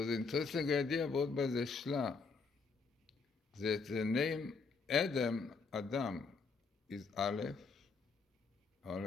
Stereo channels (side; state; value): right; quieter; 4.6 dB